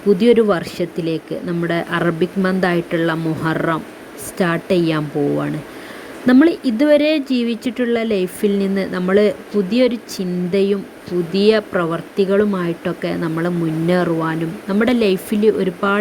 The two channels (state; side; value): identical; both; correlation 1.00